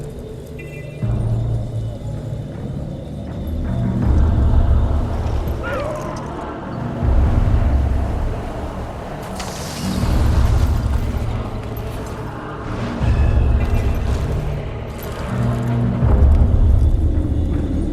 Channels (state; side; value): identical; both; correlation 1.00